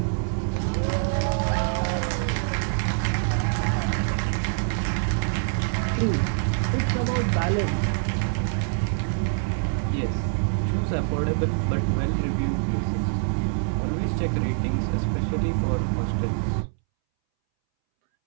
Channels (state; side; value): silent; left; 62 dB below the other